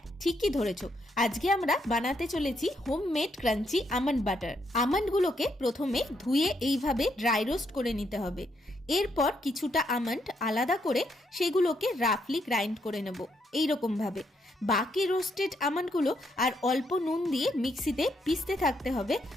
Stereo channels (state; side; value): normal; both; correlation 0.76